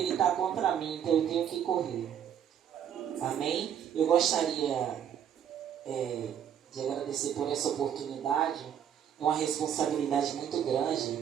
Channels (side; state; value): left; quieter; 9.1 dB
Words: está contra mim, então eu tenho que correr. Amém? Eu gostaria de agradecer por essa oportunidade. É uma responsabilidade muito grande